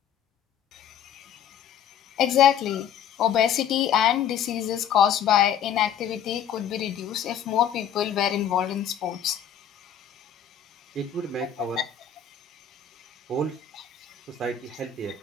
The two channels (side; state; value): right; quieter; 8.7 dB